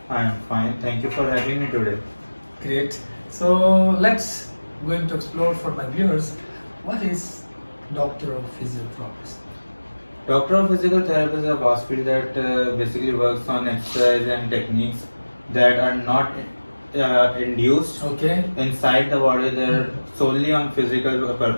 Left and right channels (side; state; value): both; inverted; correlation -1.00